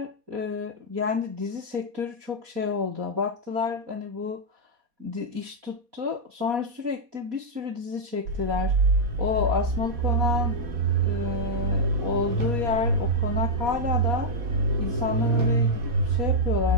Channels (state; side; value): late; left; 4.2 ms